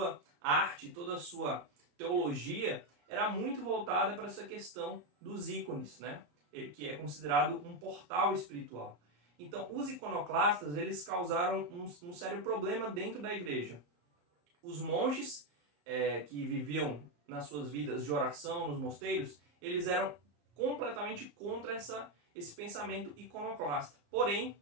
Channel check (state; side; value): late; left; 34 ms